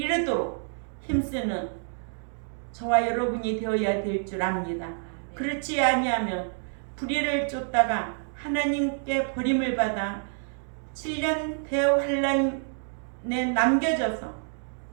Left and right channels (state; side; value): silent; left; digital silence